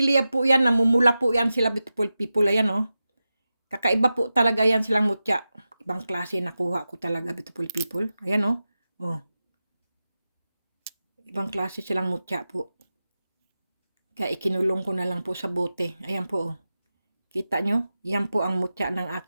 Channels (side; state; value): both; inverted; correlation -0.93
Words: po yan, namumula po yan sila, beautiful people. Ayan, oh. Kakaiba po talaga yan silang mutya. Ibang klase nakuha ko talaga, beautiful people. Ayan, oh. Oh. Ibang klase silang mutya po. Kaya ikinulong ko na lang po sa bote. Ayan po, oh. Kita nyo? Yan po ang mutya ng